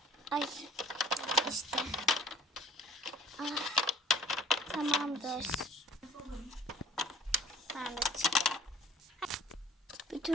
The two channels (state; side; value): normal; both; correlation 0.51